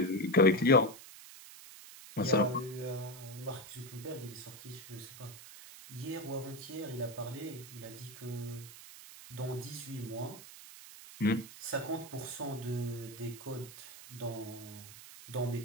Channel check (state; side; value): noise; right; hiss, 15 dB below the sound